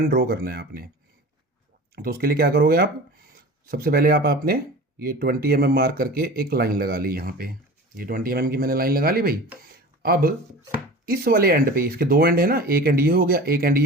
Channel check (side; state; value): both; normal; correlation 0.37